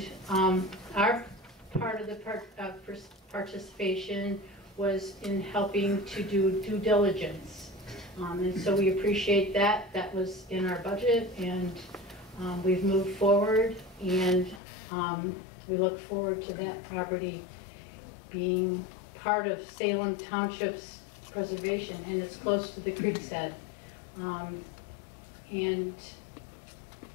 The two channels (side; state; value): right; drops out; at 14.6 s